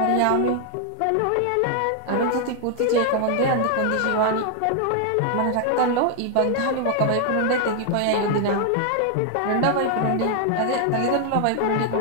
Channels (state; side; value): different; both; correlation 0.00